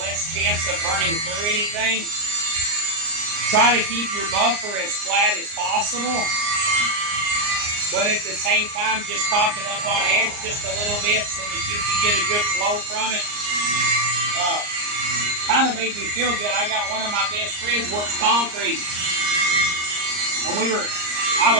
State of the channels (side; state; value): left; late; 39 ms